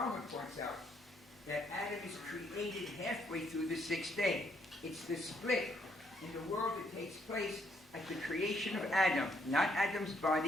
points out, that Adam is created halfway through the 6th day. It's the split in the world that takes place at the creation of Adam. Not Adam's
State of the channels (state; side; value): normal; both; correlation 0.72